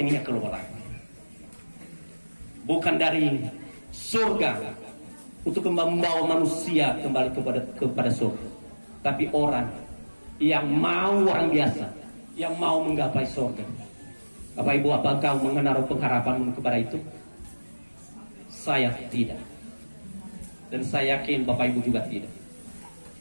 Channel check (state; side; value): inverted; both; correlation -1.00